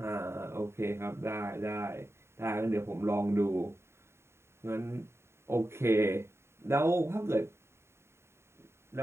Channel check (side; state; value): left; late; 0.12 ms